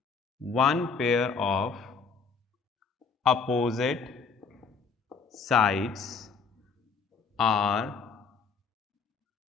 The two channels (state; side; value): quieter; right; 5.3 dB